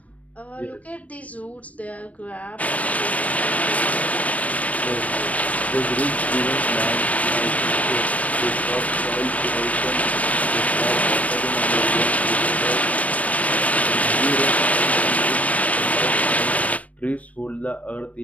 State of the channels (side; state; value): right; late; 0.068 ms